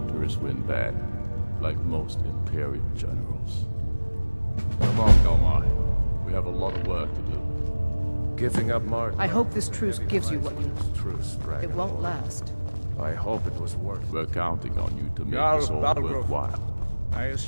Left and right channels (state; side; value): inverted; both; correlation -1.00